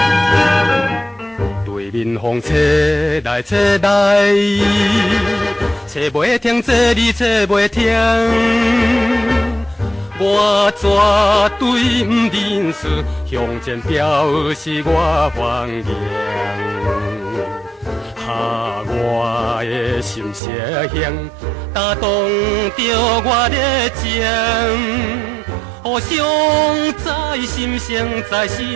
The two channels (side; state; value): left; drops out; at 20.4 s